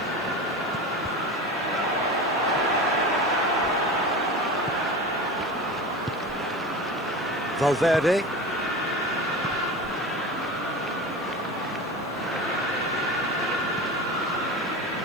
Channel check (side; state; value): right; noise; hiss, 27 dB below the sound